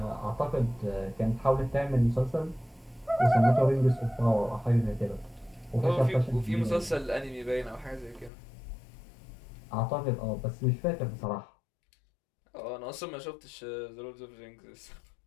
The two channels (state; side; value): drops out; right; at 8.3 s